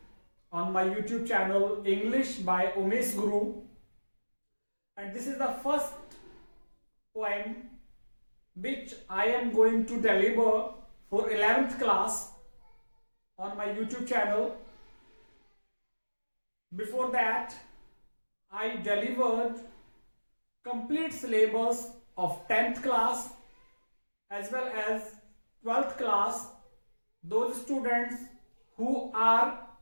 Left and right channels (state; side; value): inverted; both; correlation -1.00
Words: on my YouTube channel English by Umesh Guru. And this is the first poem which I am going to deliver for 11th class on my YouTube channel. Before that, I delivered complete syllabus of 10th class as well as 12th class. Those students who are